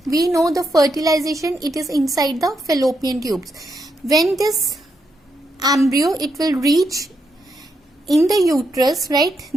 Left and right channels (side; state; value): both; normal; correlation 0.81